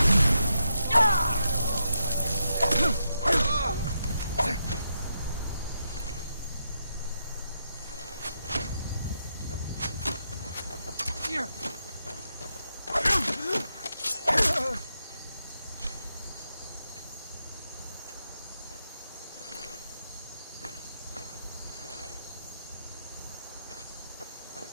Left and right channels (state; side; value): inverted; both; correlation -0.82